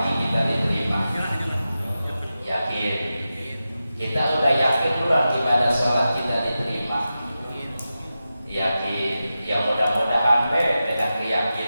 kita diterima? Yakin. Kita udah yakin belum ibadah sholat kita diterima? Yakin. Ya mudah-mudahan dengan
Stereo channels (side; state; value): both; inverted; correlation -0.92